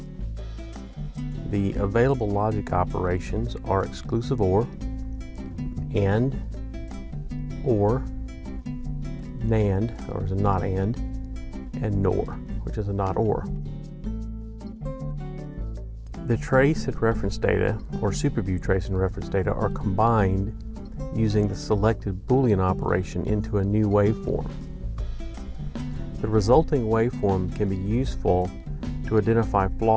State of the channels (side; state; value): both; identical; correlation 1.00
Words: the available logic operations are exclusive OR, AND, OR, NAND, or is a not AND, and NOR, which is a not OR. The trace and reference data, or SuperView trace and reference data, are combined using the selected boolean operation into a new waveform. The resulting waveform can be useful to identify